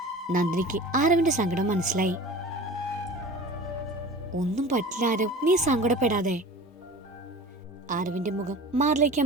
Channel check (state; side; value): normal; both; correlation 0.39